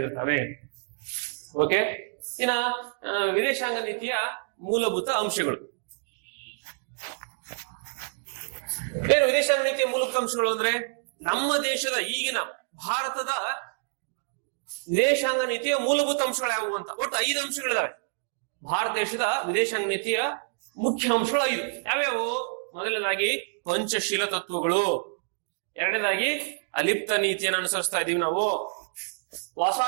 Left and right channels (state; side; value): silent; left; digital silence